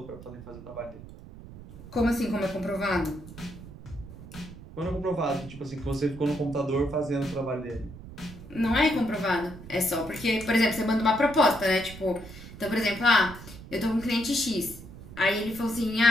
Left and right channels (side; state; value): right; noise; rumble, 15 dB below the sound